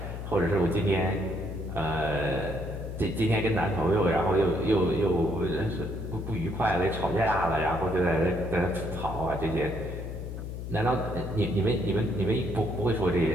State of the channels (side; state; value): left; noise; hum, 7 dB below the sound